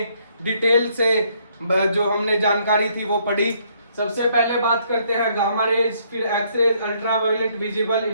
डिटेल से जो हमने जानकारी थी वो पढ़ी। सबसे पहले बात करते हैं गामा रेज, फिर X rays, ultraviolet, visible,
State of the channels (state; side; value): inverted; both; correlation -0.68